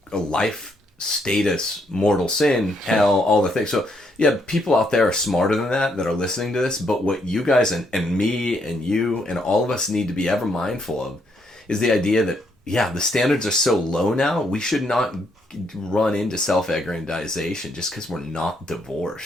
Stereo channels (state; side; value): normal; both; correlation 0.74